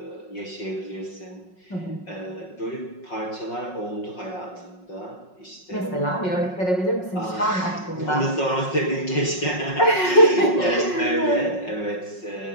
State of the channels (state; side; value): late; right; 5.4 ms